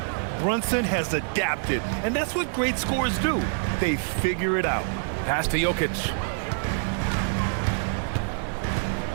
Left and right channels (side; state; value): left; silent; digital silence